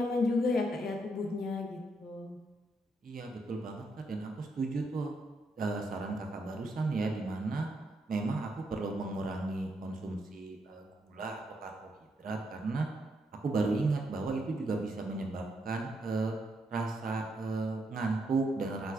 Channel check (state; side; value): normal; both; correlation 0.78